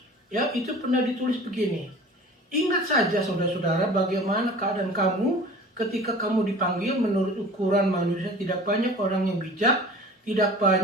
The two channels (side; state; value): both; normal; correlation 0.42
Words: ya, itu pernah ditulis begini. Ingat saja saudara-saudara bagaimana keadaan kamu ketika kamu dipanggil menurut ukuran manusia. Tidak banyak orang yang bijak, tidak